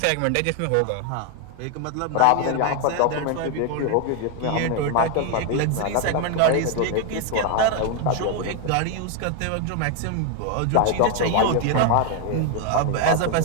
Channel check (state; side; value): different; both; correlation 0.01